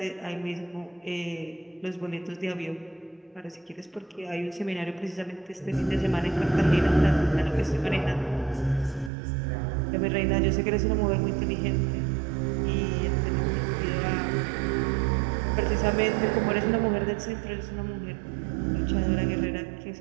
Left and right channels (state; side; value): drops out; left; at 9.1 s